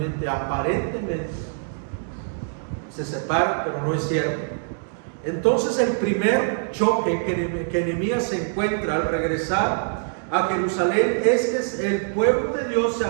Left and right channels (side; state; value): left; silent; 62 dB below the other